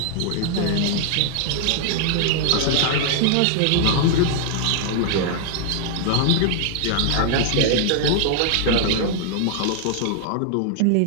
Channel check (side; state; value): both; different; correlation -0.01